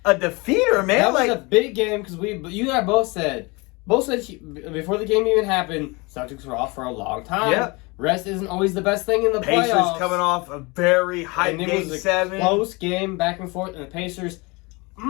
defeater, man. That was a big game because you and I both said before the game even happened, Celtics were off for a long time. Yeah. Rest isn't always the best thing in the Pacers playoffs. Coming off a very high game 7. Close game, back and forth, and the Pacers,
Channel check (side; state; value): right; quieter; 26.5 dB